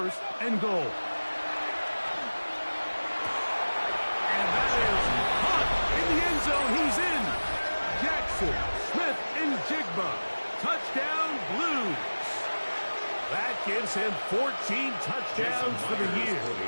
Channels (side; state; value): both; inverted; correlation -1.00